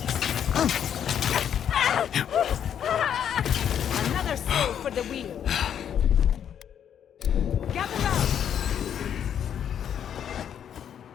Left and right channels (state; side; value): quieter; right; 9.0 dB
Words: Another soul for the wheel. Gather round.